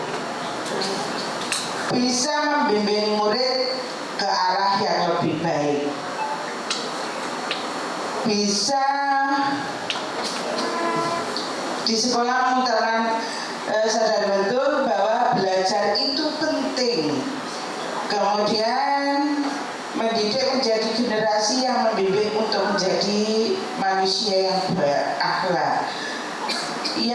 bisa membimbing murid ke arah yang lebih baik. Bisa di sekolah mengutamakan sadar betul bahwa belajar itu penting. Kemudian mendidik menjadi generasi yang membimbing untuk menjadi manusia yang berakhlak.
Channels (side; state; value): both; identical; correlation 1.00